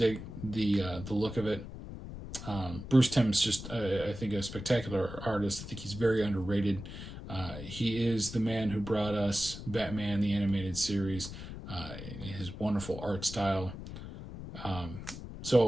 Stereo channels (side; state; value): left; noise; rumble, 10 dB below the sound